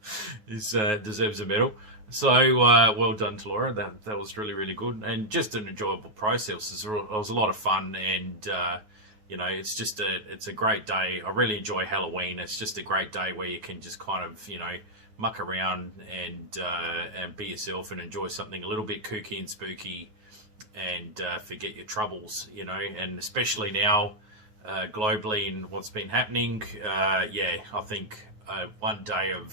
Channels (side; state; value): left; late; 9.4 ms